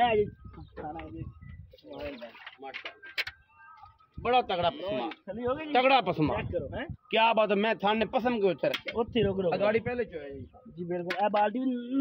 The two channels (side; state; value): both; identical; correlation 1.00